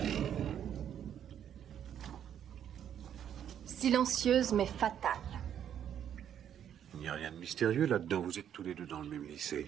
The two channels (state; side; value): quieter; left; 9.5 dB